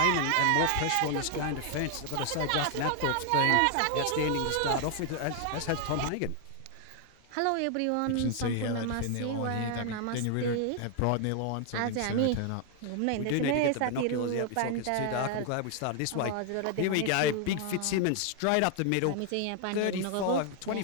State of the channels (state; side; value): different; both; correlation 0.00